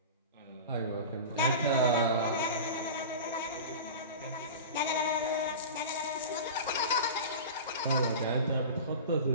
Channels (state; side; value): inverted; both; correlation -0.31